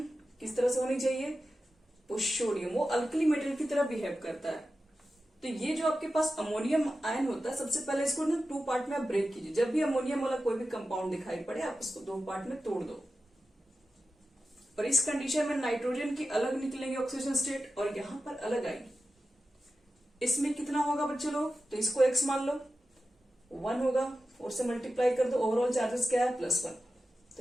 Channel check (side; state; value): both; normal; correlation 0.93